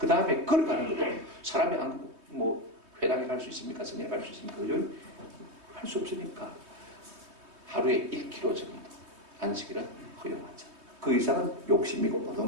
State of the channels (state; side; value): late; left; 3.2 ms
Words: 다음에 걸어가는 것도 사람이 회당에 갈 수 있습니까? 성당에 갈 수 있습니까? 그죠? 할 수 없으니까 하루에 1km 정도 안식일은 허용하자. 그 이상은 욕심이고